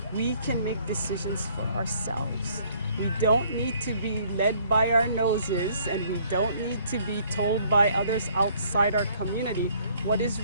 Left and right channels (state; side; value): inverted; both; correlation -0.61